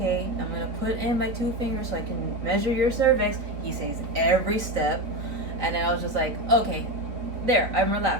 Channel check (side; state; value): left; late; 3.9 ms